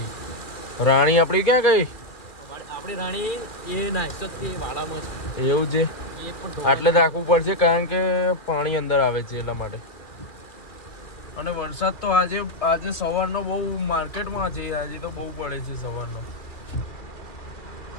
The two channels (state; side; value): late; right; 2.6 ms